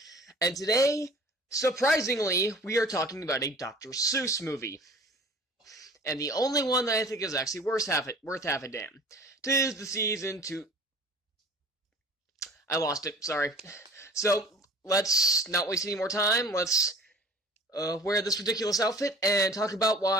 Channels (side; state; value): both; normal; correlation 0.45